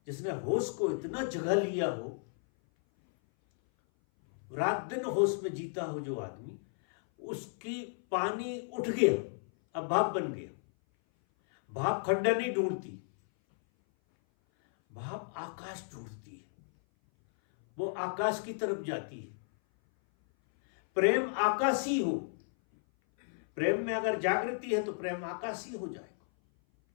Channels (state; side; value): silent; right; 56 dB below the other